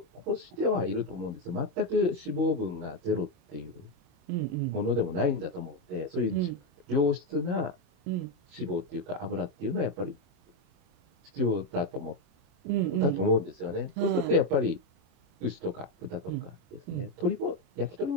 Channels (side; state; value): left; late; 28 ms